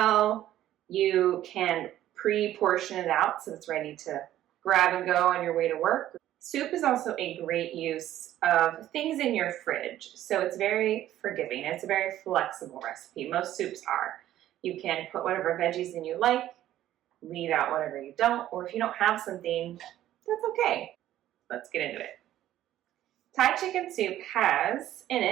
You can pre-portion it out so it's ready to grab and go on your way to work. Soup is also a great use of things in your fridge. So it's very forgiving. It's a very flexible recipe. Most soups are. You can put whatever veggies in you like, leave out whatever you don't, or if you don't have something, that's okay. Let's get into it. Thai chicken soup has in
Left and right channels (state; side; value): quieter; left; 12.9 dB